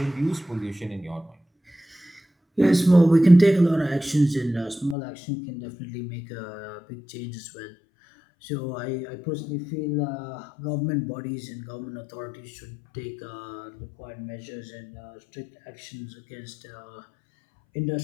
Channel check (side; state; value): right; drops out; at 5.0 s